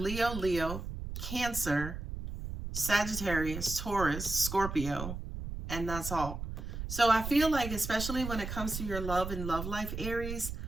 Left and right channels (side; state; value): right; noise; rumble, 7 dB below the sound